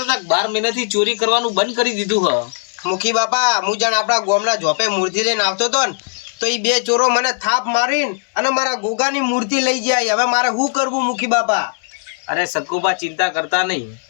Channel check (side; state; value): right; silent; 60 dB below the other